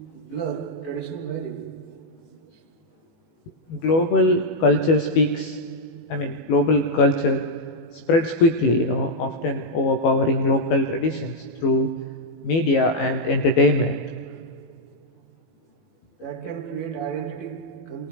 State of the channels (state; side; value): late; right; 18 ms